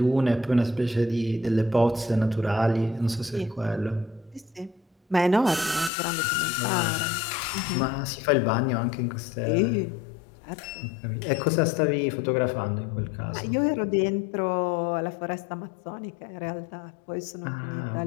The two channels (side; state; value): right; drops out; at 5.9 s